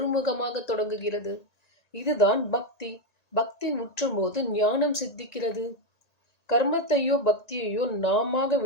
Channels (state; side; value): late; right; 1.9 ms